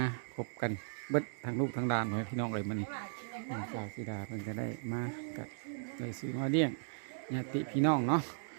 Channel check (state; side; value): silent; left; digital silence